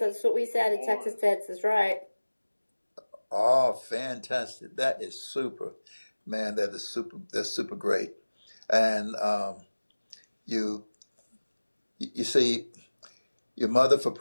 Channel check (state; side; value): inverted; both; correlation -1.00